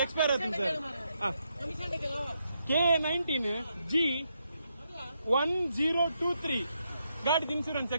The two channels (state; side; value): inverted; both; correlation -0.80